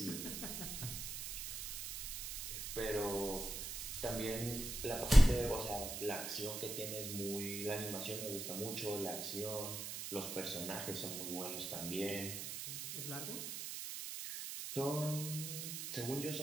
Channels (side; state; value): right; noise; hiss, 5 dB below the sound